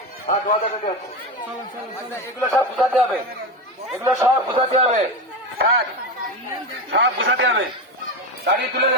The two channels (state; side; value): normal; both; correlation 0.18